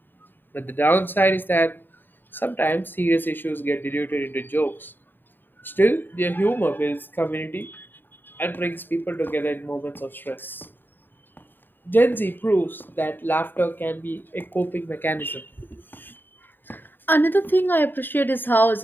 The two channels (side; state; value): right; late; 0.094 ms